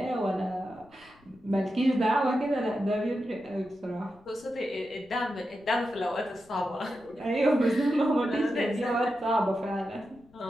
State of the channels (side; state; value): left; noise; rumble, 28 dB below the sound